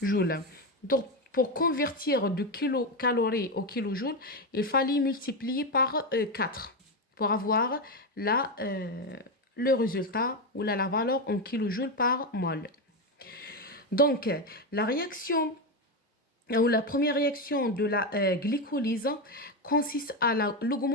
Donc, pour convertir de kilocalories au kilojoules, il fallait multiplier par 4 pour avoir le résultat ou la valeur en kilojoules par mol. Donc, la réaction ou la première réaction de la glycolyse consiste à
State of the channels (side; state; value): both; normal; correlation 0.11